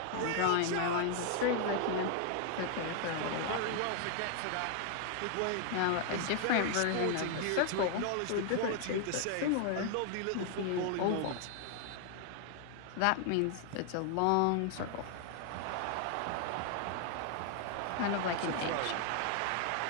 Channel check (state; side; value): different; both; correlation 0.00